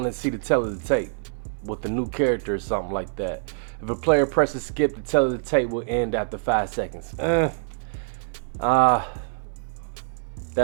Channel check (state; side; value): silent; left; digital silence